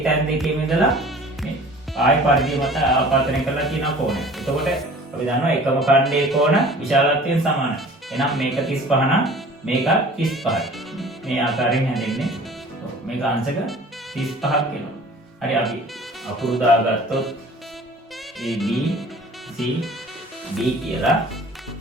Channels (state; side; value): normal; both; correlation 0.46